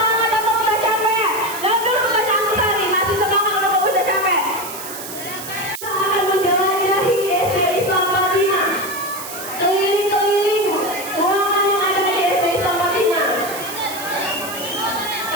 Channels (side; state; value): right; noise; hiss, 10 dB below the sound